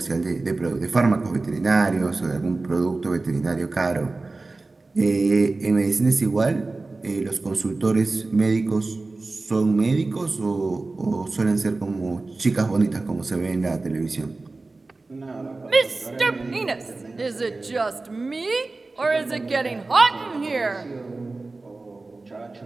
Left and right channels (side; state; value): left; quieter; 3.4 dB